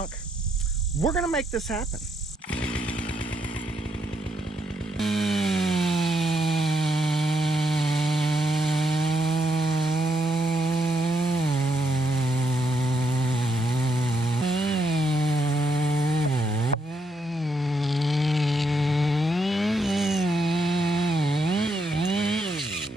We're gonna make this happen.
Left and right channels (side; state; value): both; normal; correlation 0.78